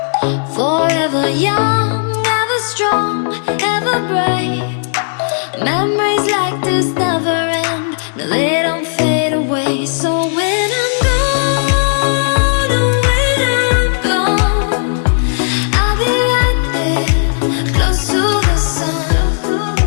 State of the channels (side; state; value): right; silent; digital silence